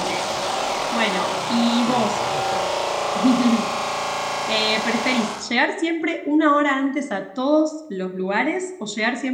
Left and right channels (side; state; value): both; identical; correlation 1.00